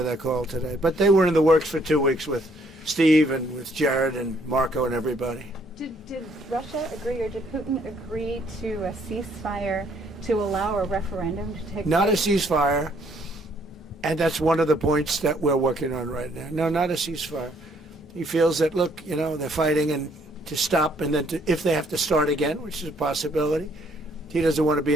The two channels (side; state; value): both; normal; correlation 0.66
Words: that call today. But they were in the works for 2 weeks with Steve and with Jared and Marco and everybody. did Russia agree, or did Putin agree to a ceasefire to allow a referendum to take Not a place? ceasefire, and that's one of the points that we're working on right now. No, not a ceasefire. He feels that, look, you know, they're fighting and to stop, and then if they have to start again, which is a possibility, he doesn't want to be